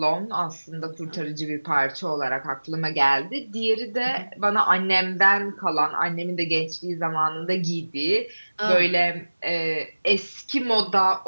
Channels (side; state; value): both; inverted; correlation -1.00